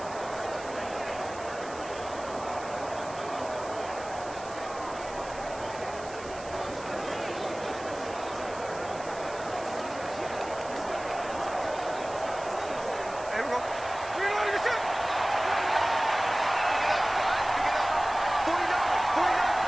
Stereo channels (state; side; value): noise; right; hiss, 17 dB below the sound